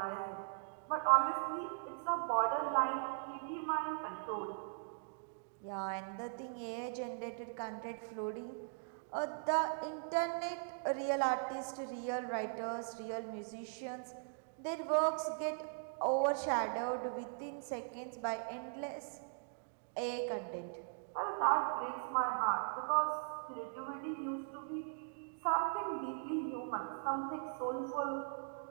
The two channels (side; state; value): left; silent; digital silence